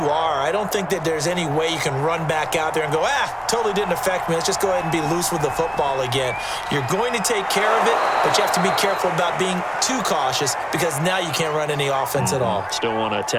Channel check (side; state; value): both; identical; correlation 1.00